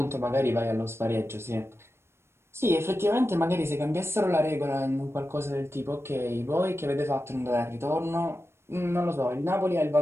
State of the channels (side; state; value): left; late; 0.12 ms